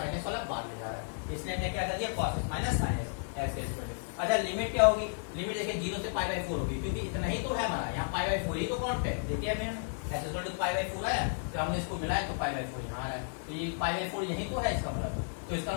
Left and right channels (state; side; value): silent; right; digital silence